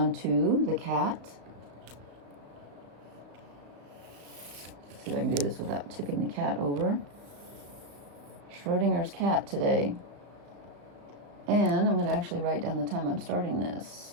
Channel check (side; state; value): left; late; 35 ms